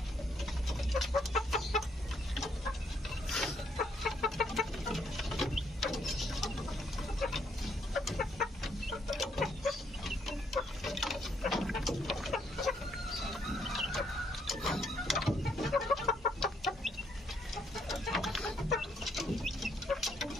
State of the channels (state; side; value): normal; both; correlation 0.71